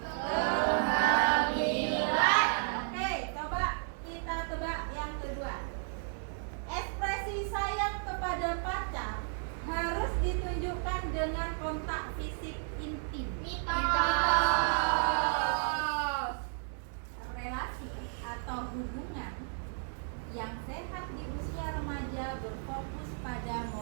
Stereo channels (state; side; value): silent; left; 56 dB below the other